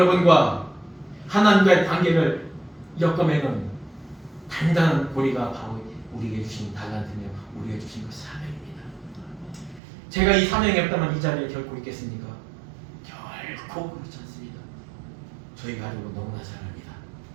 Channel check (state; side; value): drops out; left; at 9.8 s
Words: 하나님과의 관계를 엮어매는 단단한 고리가 바로 우리에게 주신 달란트며 우리에게 주신 그 사명입니다. 제가 이 사명이 없다면 이 자리에 결코 있겠습니까? 결코 그렇지 않습니다. 저희 가족은 너무나 잘 압니다.